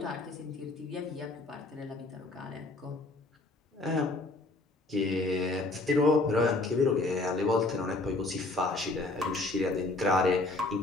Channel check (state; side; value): quieter; right; 3.1 dB